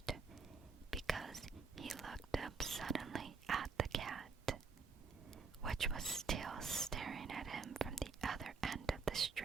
because he looked up suddenly at the cat, which was still staring at him from the other end of the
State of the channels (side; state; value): left; quieter; 4.7 dB